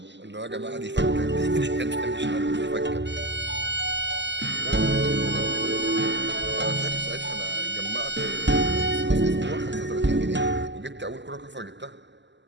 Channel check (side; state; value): left; late; 0.52 ms